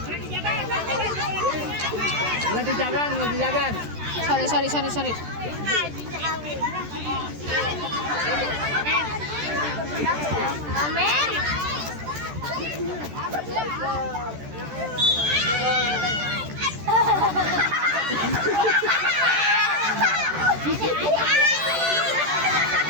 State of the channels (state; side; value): late; left; 13 ms